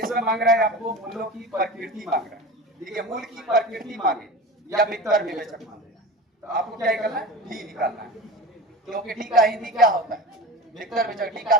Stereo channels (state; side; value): normal; both; correlation 0.32